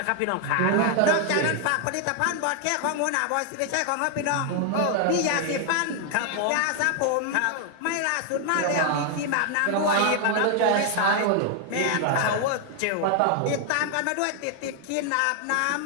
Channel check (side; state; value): both; different; correlation 0.00